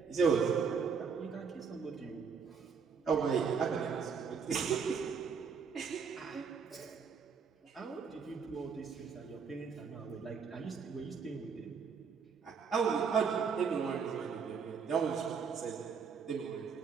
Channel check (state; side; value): quieter; left; 6.0 dB